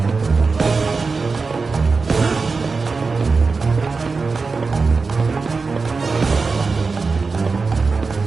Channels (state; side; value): quieter; left; 4.4 dB